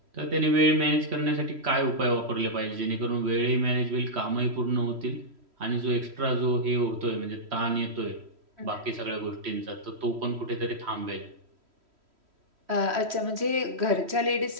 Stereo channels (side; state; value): left; late; 3.1 ms